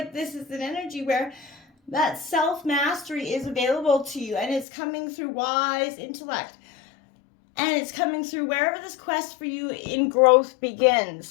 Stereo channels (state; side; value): drops out; right; at 4.7 s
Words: this is an energy where that self-mastery is available to you, and it's coming through wise intellect. And it's coming through wherever this quest for you in growth